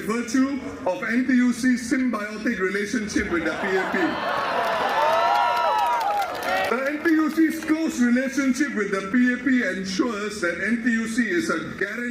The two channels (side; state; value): both; identical; correlation 1.00